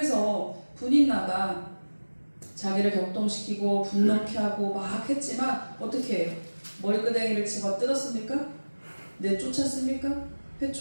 분인나가 자기를 격동시키고 분노케 하고 막 했지만 어떻게 해요? 머리끄댕이를 집어 뜯었습니까? 내쫓았습니까?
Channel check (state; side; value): inverted; both; correlation -1.00